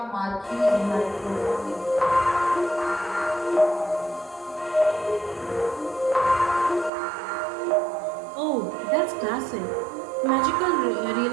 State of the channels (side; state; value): left; drops out; at 6.9 s